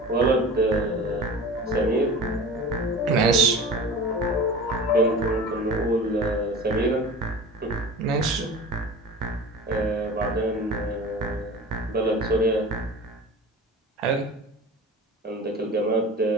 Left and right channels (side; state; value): both; normal; correlation 0.36